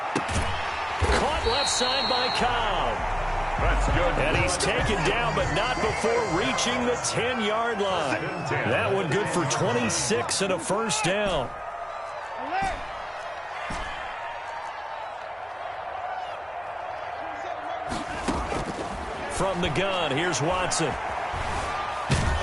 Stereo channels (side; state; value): both; identical; correlation 1.00